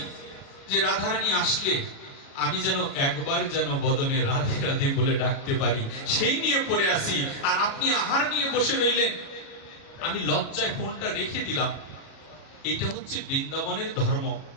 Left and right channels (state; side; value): late; right; 37 ms